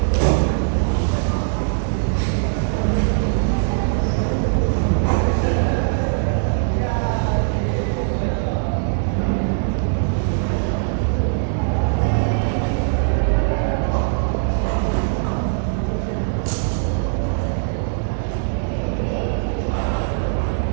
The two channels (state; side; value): silent; left; digital silence